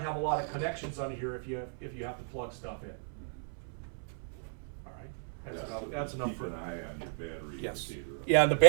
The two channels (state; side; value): silent; left; 53 dB below the other